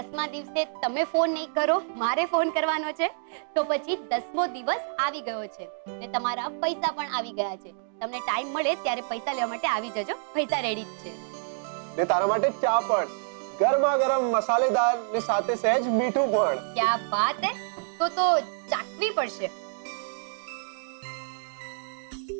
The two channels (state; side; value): silent; left; digital silence